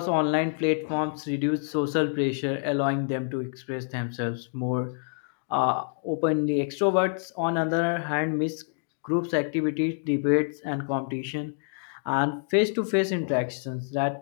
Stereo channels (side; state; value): right; silent; digital silence